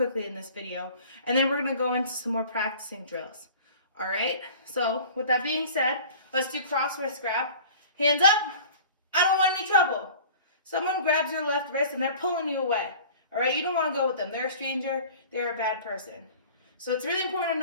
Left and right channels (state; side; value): inverted; both; correlation -0.43